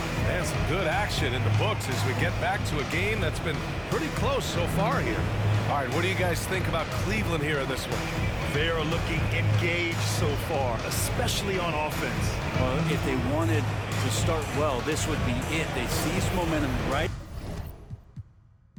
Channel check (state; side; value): identical; both; correlation 1.00